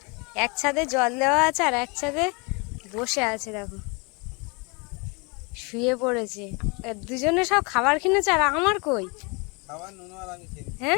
এক ছাদে জল দেওয়া আছে আর এক ছাদে বসে আছে, দেখো শুয়ে পড়েছে। দুজনে সব খাবার কিনেছে আর আমার কই?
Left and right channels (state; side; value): quieter; right; 30.8 dB